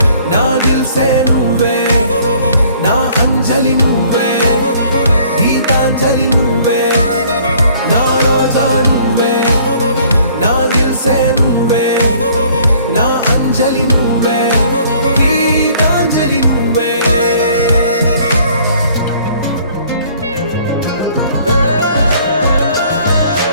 నా దిల్ సే నువ్వే నా అంజలి నువ్వే గీతాంజలి నువ్వే నా రోజా నువ్వే నా దిల్ సే నువ్వే నా అంజలి నువ్వే గీతాంజలి నువ్వే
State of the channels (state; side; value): inverted; both; correlation -0.57